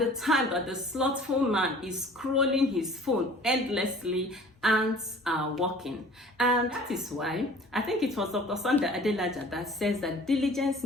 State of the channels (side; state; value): both; normal; correlation 0.48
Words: time that the slothful man is scrolling his phone endlessly, ants are walking. And that is why I think it was Dr. Sunday Adelaja that says that diligence